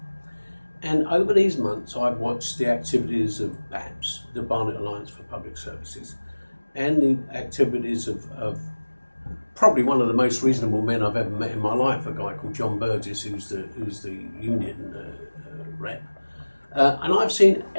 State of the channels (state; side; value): inverted; both; correlation -1.00